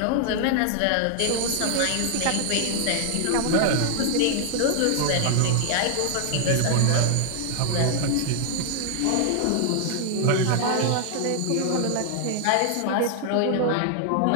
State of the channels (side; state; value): both; different; correlation 0.00